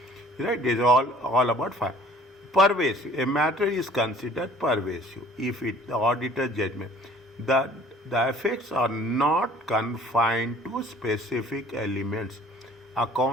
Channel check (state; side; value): normal; both; correlation 0.53